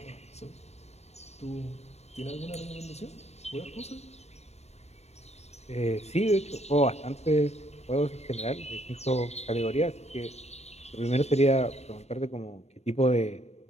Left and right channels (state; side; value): late; right; 0.31 ms